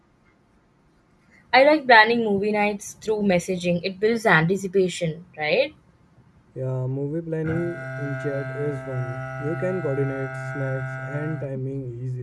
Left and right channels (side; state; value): both; identical; correlation 1.00